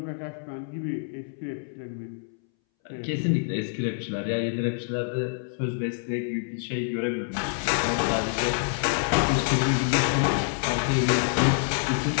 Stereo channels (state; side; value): silent; right; 60 dB below the other